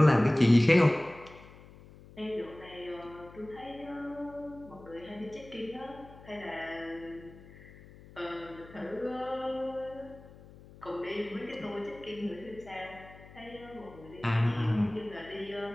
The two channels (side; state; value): left; noise; hum, 20 dB below the sound